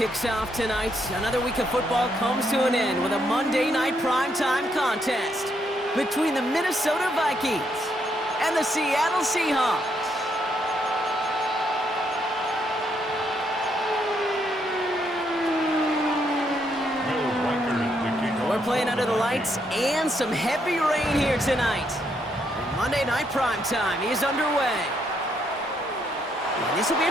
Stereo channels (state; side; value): normal; both; correlation 0.75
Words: off tonight, another week of football comes to an end with a Monday Night Primetime contest between the Minnesota Vikings and the Seattle Seahawks. We're playing under the lights and some heavy rain here tonight. And Monday Night Primetime is underway. And this will be a